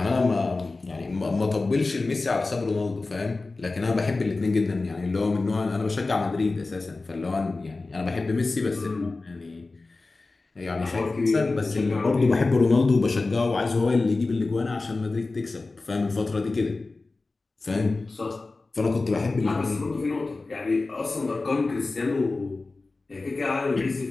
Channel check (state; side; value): quieter; right; 3.5 dB